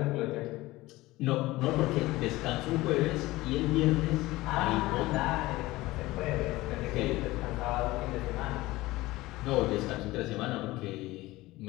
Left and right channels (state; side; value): quieter; right; 18.9 dB